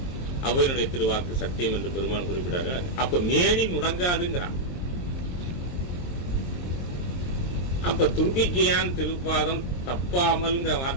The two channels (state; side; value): late; right; 23 ms